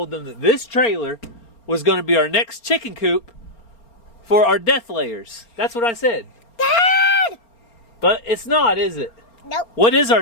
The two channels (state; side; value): late; right; 4.3 ms